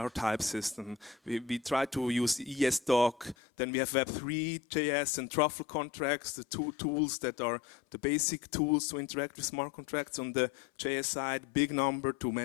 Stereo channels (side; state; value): right; drops out; at 3.4 s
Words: type system. We try to use ESDoc. Then we have Web3, JS, and Truffle contracts, the two tools that are the basic tools to interact with smart contracts on the JS side. Big Number to